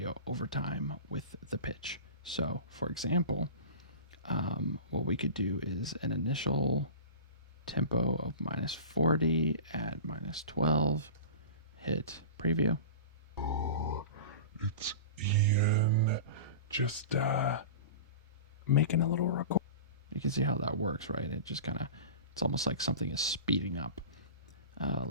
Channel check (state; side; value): inverted; both; correlation -0.33